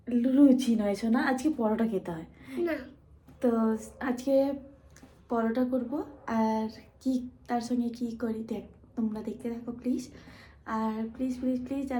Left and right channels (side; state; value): both; identical; correlation 1.00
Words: লুচি নয় শোনা, আজকে পরোটা খেতে হয় না। তো আজকে পরোটা করব, আর কি তার সঙ্গে কি করি তোমরা দেখতে থাকো প্লিজ। আর প্লিজ প্লিজ প্লিজ